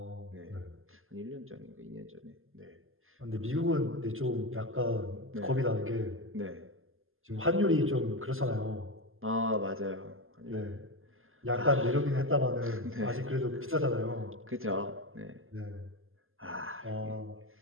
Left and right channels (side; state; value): left; late; 0.60 ms